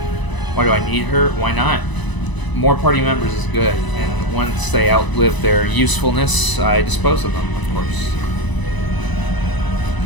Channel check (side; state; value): right; late; 1.0 ms